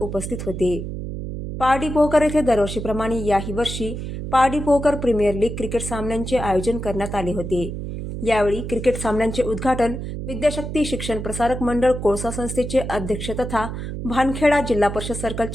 उपस्थित होते। पारडी पोहकर येथे दरवर्षीप्रमाणे याही वर्षी पारडी पोहकर प्रीमियर लीग क्रिकेट सामन्यांचे आयोजन करण्यात आले होते। यावेळी क्रिकेट सामन्यांचे उद्घाटन विद्याशक्ती शिक्षण प्रसारक मंडळ कोळसा संस्थेचे अध्यक्ष तथा भानखेडा जिल्हा परिषद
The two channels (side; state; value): right; noise; hum, 6 dB below the sound